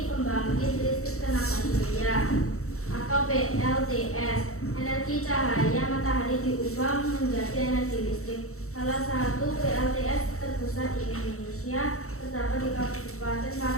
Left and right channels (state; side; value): late; right; 0.64 ms